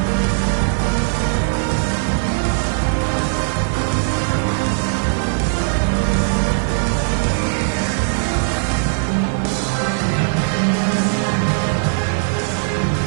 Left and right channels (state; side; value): silent; left; 57 dB below the other